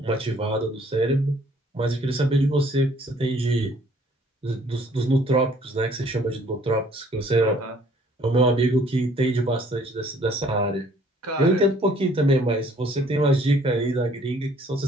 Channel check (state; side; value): normal; both; correlation 0.59